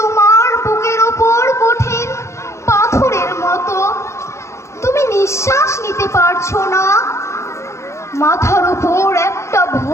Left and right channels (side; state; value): right; late; 0.14 ms